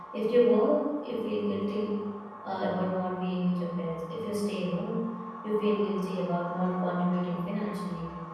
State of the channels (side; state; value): both; identical; correlation 1.00